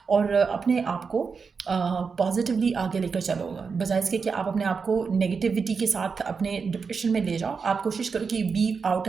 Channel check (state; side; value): quieter; left; 5.3 dB